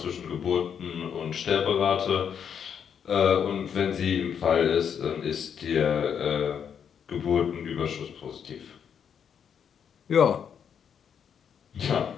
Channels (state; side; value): quieter; right; 7.8 dB